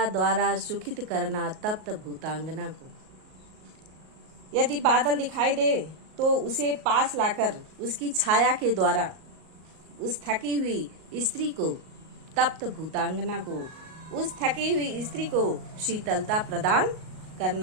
द्वारा सुखित करना तप्त भूतांगना को। यदि बादल दिखाई दे तो उसे पास लाकर उसकी छाया के द्वारा उस थकी हुई स्त्री को, तप्त भूतांगना को, उस थकी हुई स्त्री को शीतलता प्रदान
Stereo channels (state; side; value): late; left; 38 ms